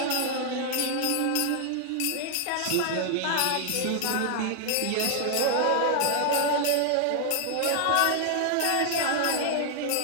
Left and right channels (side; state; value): both; different; correlation 0.00